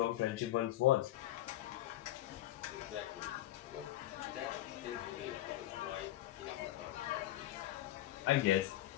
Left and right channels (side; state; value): right; quieter; 14.5 dB